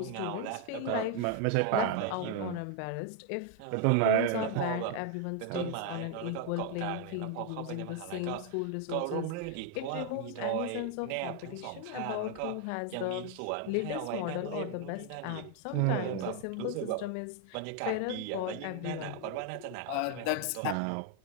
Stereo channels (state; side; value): different; both; correlation 0.00